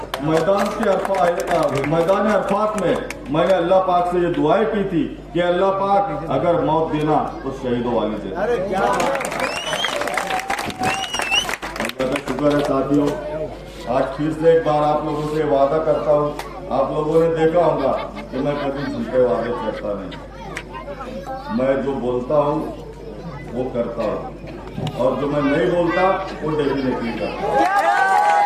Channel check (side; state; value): both; identical; correlation 1.00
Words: मैदान अरफात में मैंने अल्लाह पाक से ये दुआएं की थी कि अल्लाह पाक अगर मौत देना तो शहीदों वाली दे। अल्लाह का शुक्र है साथियों, आज फिर से एक बार आप लोगों से वादा करता हूँ, आप लोगों ने देखा होगा कि मैं कभी झूठे वादे करता नहीं, मैं जो बोलता हूँ वो करता हूँ और जो मैं नहीं बोलता वो डेफिनेटली करता।